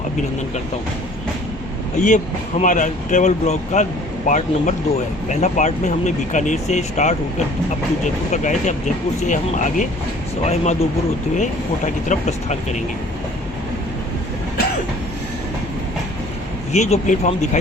अभिनंदन करता हूं। ये हमारा ट्रैवल ब्लॉग का पार्ट नंबर 2 है। पहला पार्ट में हमने बीकानेर से स्टार्ट होकर अप टू जयपुर तक आए थे। अब जयपुर से हम आगे सवाई माधोपुर होते हुए कोटा की तरफ प्रस्थान करेंगे। ये जो प्लेटफॉर्म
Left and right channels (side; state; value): both; normal; correlation 0.52